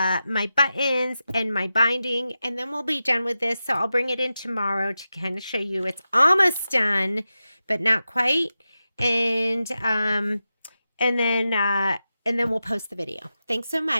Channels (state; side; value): inverted; both; correlation -0.92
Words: my buttons, and my binding, and then we'll be done with this. So I'll bring it in tomorrow to kind of show you it's almost done, but not quite. And then we'll post the video. Thanks so